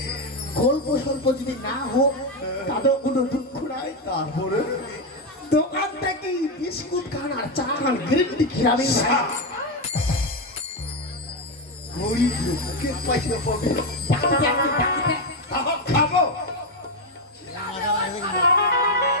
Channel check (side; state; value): both; normal; correlation 0.08